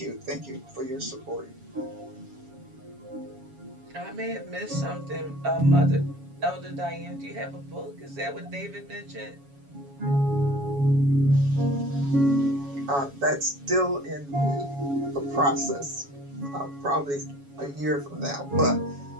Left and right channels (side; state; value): left; late; 7.2 ms